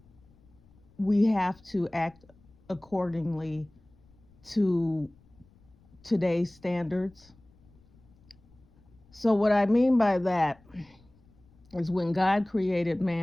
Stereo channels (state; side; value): noise; left; rumble, 29 dB below the sound